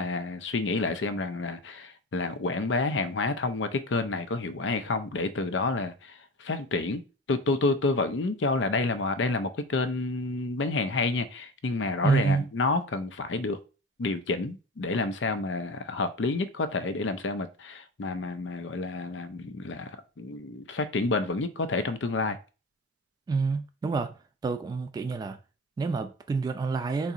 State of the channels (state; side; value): normal; both; correlation 0.30